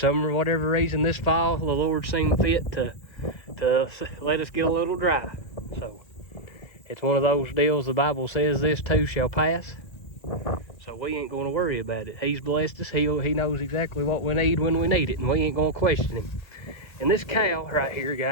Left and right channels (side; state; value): right; late; 2.0 ms